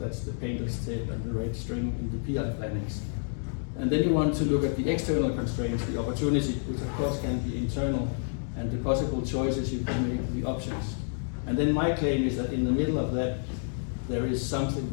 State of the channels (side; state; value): right; silent; 58 dB below the other